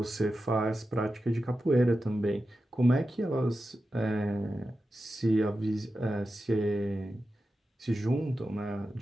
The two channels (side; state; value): both; normal; correlation 0.91